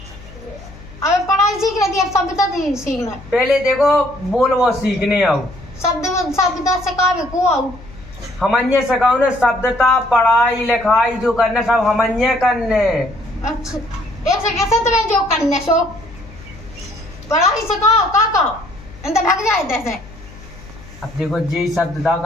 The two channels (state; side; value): noise; left; hum, 19 dB below the sound